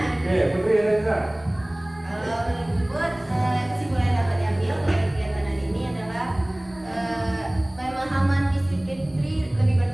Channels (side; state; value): left; noise; rumble, 24 dB below the sound